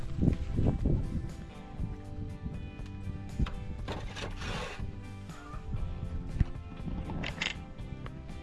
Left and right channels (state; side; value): identical; both; correlation 1.00